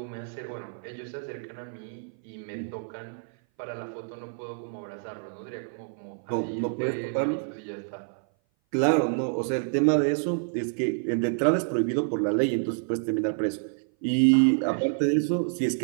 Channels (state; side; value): silent; left; 57 dB below the other